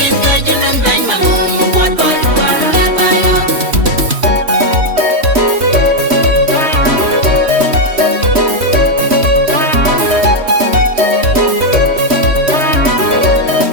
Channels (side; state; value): left; late; 3.1 ms